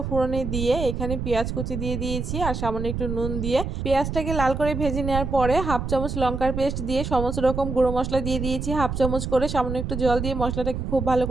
ফোড়নে দিয়ে এখানে পেঁয়াজ কুচি দিয়ে দিয়েছি আর সামান্য একটু নুন দিয়ে পেঁয়াজটাকে লাল করে ভেজে নেওয়ার পরে হাফ চামচ লঙ্কার পেস্ট দিয়ে সমস্ত রকম গুঁড়ো মশলা দিয়ে দিয়েছি হাফ চামচ করে। সামান্য একটু জল দিয়ে মশলাটাকে খুব ভালো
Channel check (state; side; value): noise; right; rumble, 4 dB below the sound